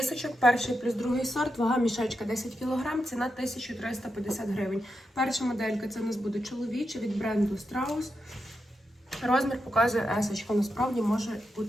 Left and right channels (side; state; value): both; normal; correlation 0.86